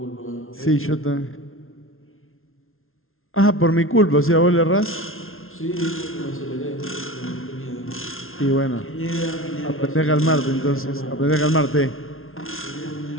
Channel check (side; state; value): right; late; 0.61 ms